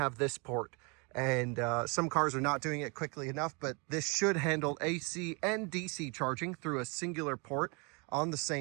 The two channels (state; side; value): quieter; left; 31.7 dB